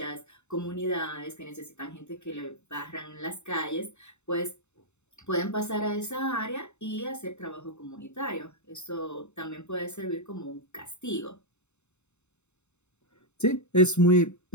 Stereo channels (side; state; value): right; late; 0.82 ms